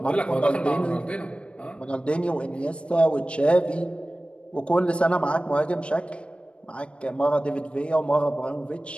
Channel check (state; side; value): late; right; 0.059 ms